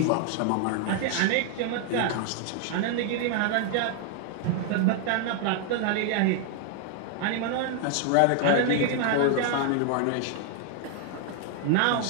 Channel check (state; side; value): different; both; correlation 0.00